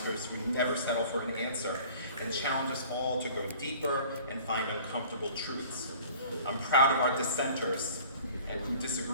who never settle for an answer and challenge us all to go deeper and find uncomfortable truths. I'm proud of our dissenters and who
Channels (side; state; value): both; inverted; correlation -0.47